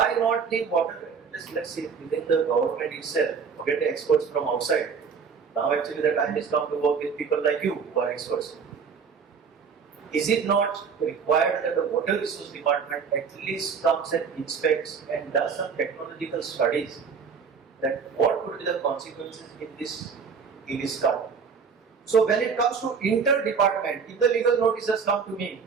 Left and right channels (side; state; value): left; quieter; 6.0 dB